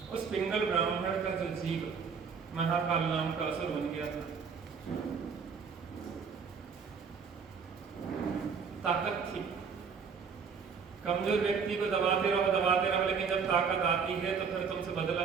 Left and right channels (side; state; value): left; quieter; 6.0 dB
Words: उस पिंगल ब्राह्मण का जो जीव महाकाल नाम का असुर बन गया था, ताकत थी। कमजोर व्यक्ति को दबाते रहो, लेकिन जब ताकत आती है तो फिर तुमसे बदला